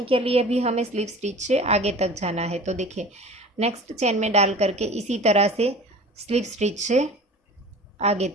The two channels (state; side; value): normal; both; correlation 0.40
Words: के लिए भी हमें स्लिप स्टिच से आगे तक जाना है। तो देखिए नेक्स्ट चेन में डाल करके इसी तरह से स्लिप स्टिच से आगे